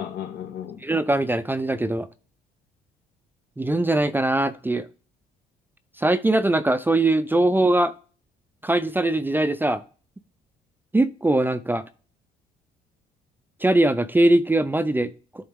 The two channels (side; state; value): both; normal; correlation 0.88